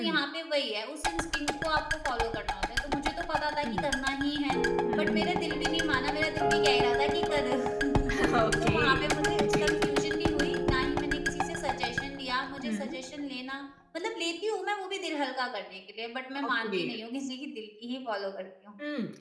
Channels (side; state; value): both; identical; correlation 1.00